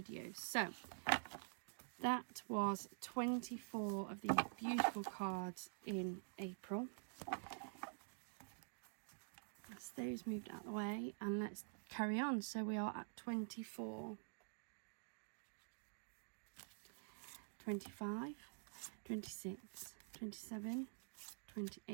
So that was 24 of these beautiful cards in April. That's those moved out of the way, and let's carry on. So we are at 24, 25, 26, 27,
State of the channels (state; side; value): silent; left; digital silence